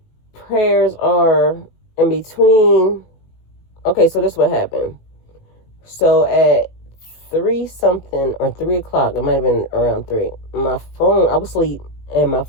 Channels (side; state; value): right; late; 18 ms